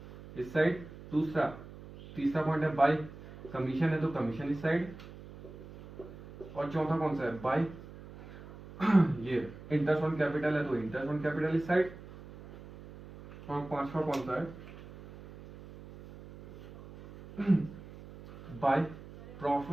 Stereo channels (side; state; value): right; noise; hum, 16 dB below the sound